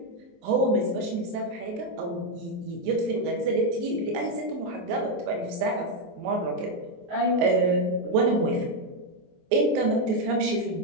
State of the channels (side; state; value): left; late; 23 ms